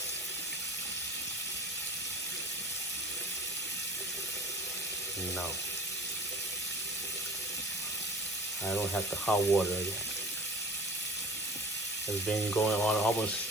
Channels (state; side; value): normal; both; correlation 0.43